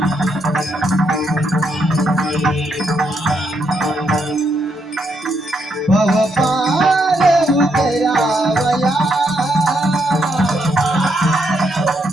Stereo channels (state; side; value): normal; both; correlation 0.77